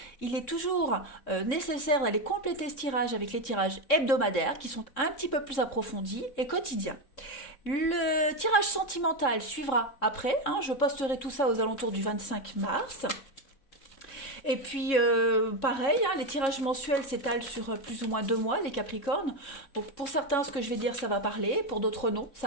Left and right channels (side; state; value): right; late; 3.6 ms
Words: Il est toujours nécessaire d'aller compléter ce tirage avec les tirages hebdomadaires qui sont un petit peu plus approfondis et quotidiens. Le tirage sentimental suivra après. Je posterai tout ça aux alentours du 25 mars. Et puis, pareil, les tirages mensuels s'étalent sur plus ou moins 2 mois, les Capricornes. Donc, pour certains, ce que je vais dire, ça va parler. Pour d'autres, non.